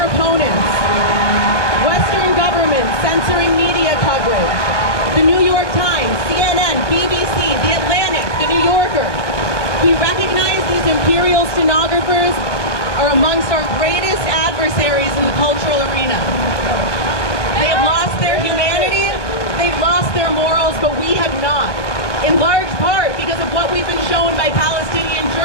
opponents. Western governments censoring media coverage. The New York Times, CNN, BBC, The Atlantic, The New Yorker. We recognize these imperial stenographers are amongst our greatest adversaries in the cultural arena. They have lost their humanity, they've lost their morals, but we have not. In large part because of what we've been shown by Palestinian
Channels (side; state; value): right; late; 1.1 ms